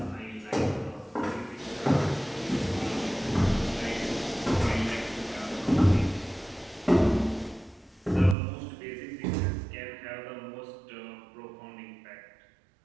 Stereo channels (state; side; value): drops out; left; at 8.3 s